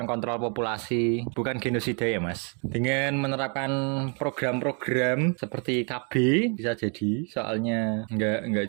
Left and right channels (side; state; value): left; quieter; 37.6 dB